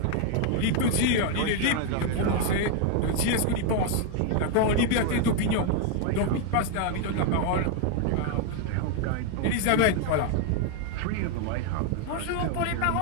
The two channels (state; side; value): different; both; correlation 0.01